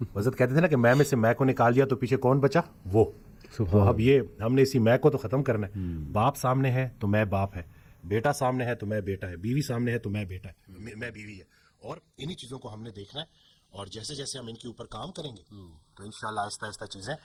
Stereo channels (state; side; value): identical; both; correlation 1.00